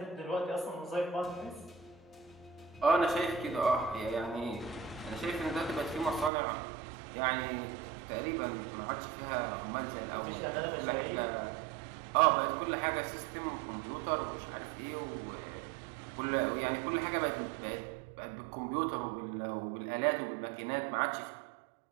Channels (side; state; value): left; drops out; at 6.3 s